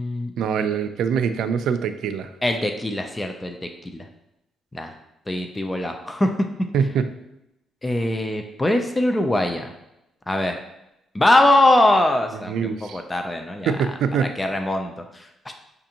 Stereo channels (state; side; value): normal; both; correlation 0.83